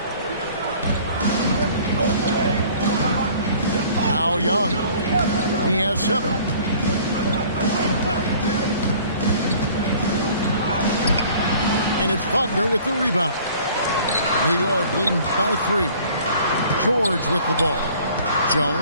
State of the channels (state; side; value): inverted; both; correlation -0.51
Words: Now Young. He has 7. And it's Wagner with the rebound. New York leading by 3. George with the ball.